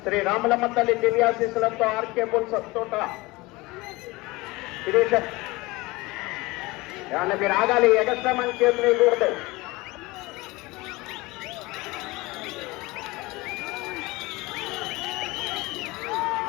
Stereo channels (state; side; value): quieter; right; 22.2 dB